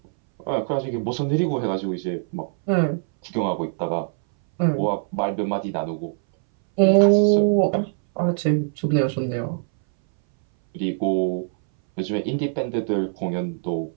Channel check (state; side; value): silent; left; 61 dB below the other